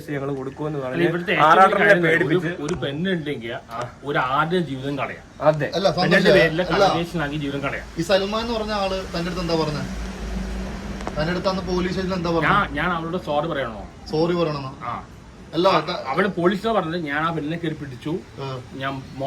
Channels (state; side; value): identical; both; correlation 1.00